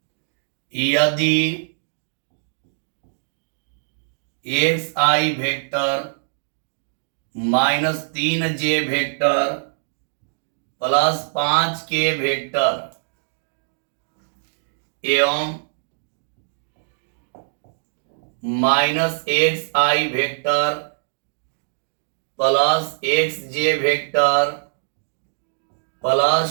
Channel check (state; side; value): silent; left; digital silence